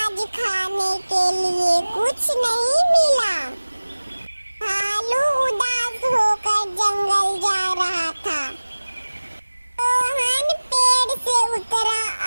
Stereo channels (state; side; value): inverted; both; correlation -1.00